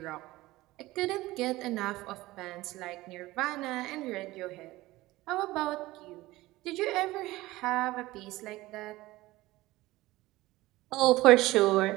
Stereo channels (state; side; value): quieter; left; 18.5 dB